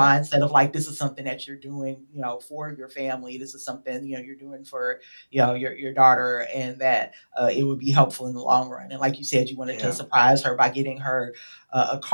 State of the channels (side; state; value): both; inverted; correlation -1.00